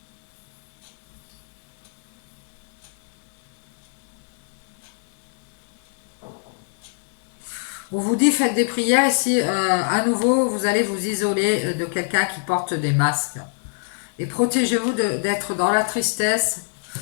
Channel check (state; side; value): silent; right; digital silence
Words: On vous dit faites des prières ici, à nouveau vous allez vous isoler de quelqu'un qui porte des masques. Et protégez-vous d'être dans la tristesse,